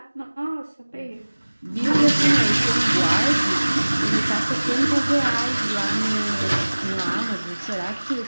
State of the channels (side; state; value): both; inverted; correlation -1.00